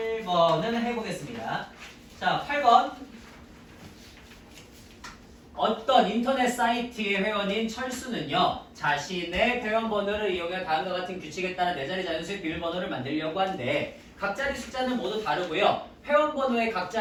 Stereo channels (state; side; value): identical; both; correlation 1.00